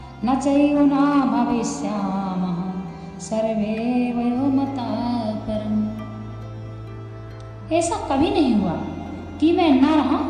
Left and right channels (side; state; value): both; identical; correlation 1.00